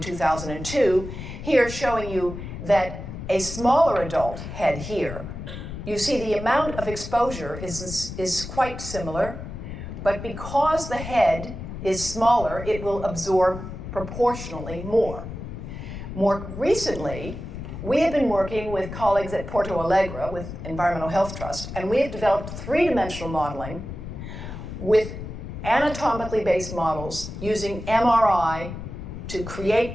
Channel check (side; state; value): left; noise; rumble, 9 dB below the sound